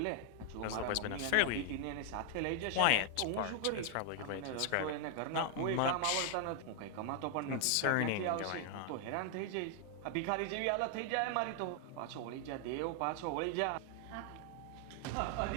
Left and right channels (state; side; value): different; both; correlation 0.00